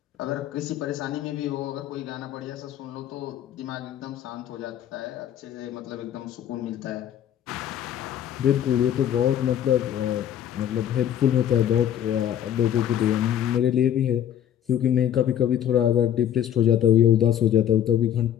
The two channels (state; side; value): quieter; right; 10.4 dB